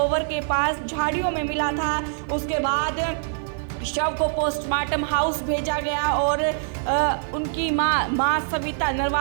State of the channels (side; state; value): left; silent; 61 dB below the other